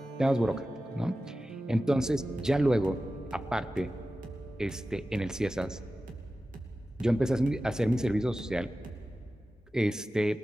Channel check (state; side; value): normal; both; correlation 0.94